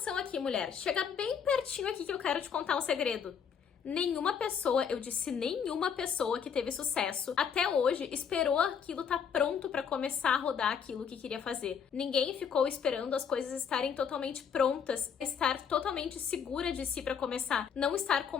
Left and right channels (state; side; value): quieter; right; 7.1 dB